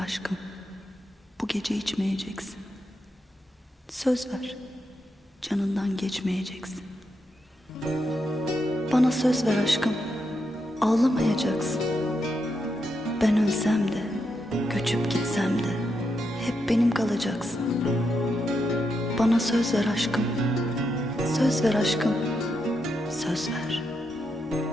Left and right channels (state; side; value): normal; both; correlation 0.83